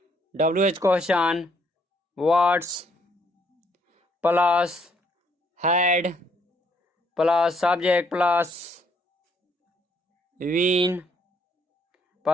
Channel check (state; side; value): normal; both; correlation 0.68